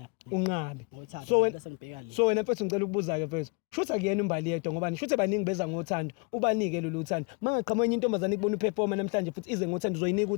unqabe ngothando bese ngibheka le so wena mfethu ngicela ukubuza ke mfethu shutha kuyena umbali yedwa ngoba shutha baningi beza ngothando ubanike lolu thando mangaqhamuka intombazane ikubona uperforma namhlanje futhi ize ngothando uzoyinika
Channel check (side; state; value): right; quieter; 33.4 dB